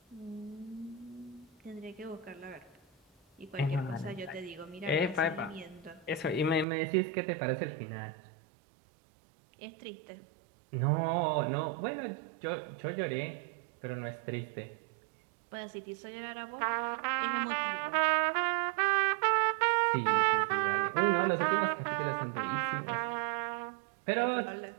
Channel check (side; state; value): left; drops out; at 6.7 s